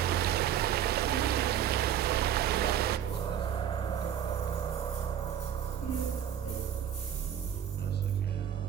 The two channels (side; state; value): left; quieter; 9.7 dB